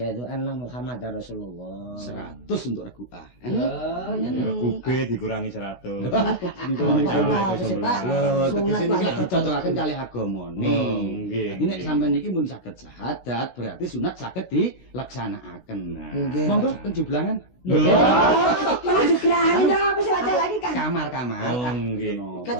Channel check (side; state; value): right; late; 16 ms